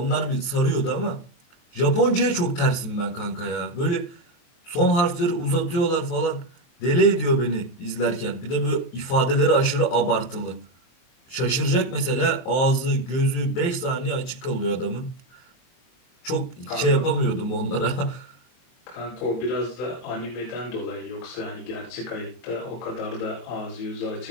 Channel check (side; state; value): right; late; 23 ms